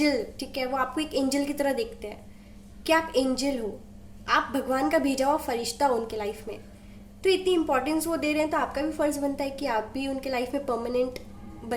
ठीक है, वो आपको एक एंजल की तरह देखते हैं कि आप एंजल हो, आप भगवान का भेजा हुआ फरिश्ता हो उनके लाइफ में। तो इतनी इंपॉर्टेंस वो दे रहे हैं, तो आपका भी फर्ज बनता है कि आप भी उनके लाइफ में परमानेंट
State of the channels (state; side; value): identical; both; correlation 1.00